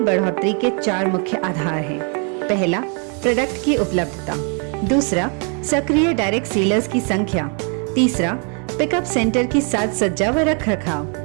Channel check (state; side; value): quieter; left; 39.5 dB